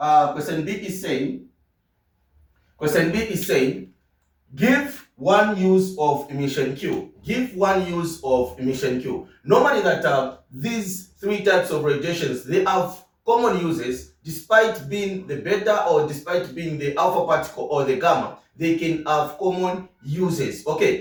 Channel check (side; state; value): both; identical; correlation 1.00